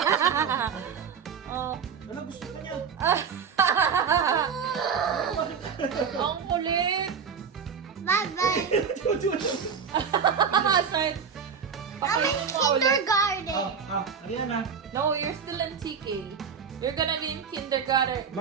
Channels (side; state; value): left; quieter; 6.5 dB